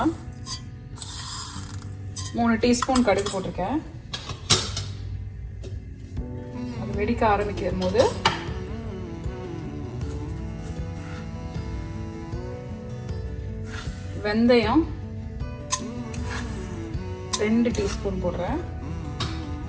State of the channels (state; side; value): identical; both; correlation 1.00